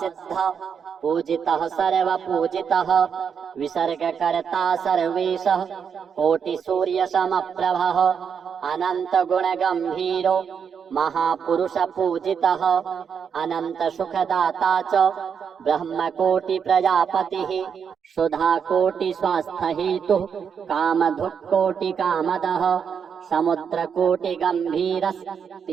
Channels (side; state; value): left; quieter; 7.0 dB